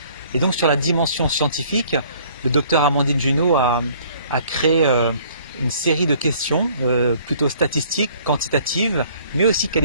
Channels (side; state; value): both; inverted; correlation -0.57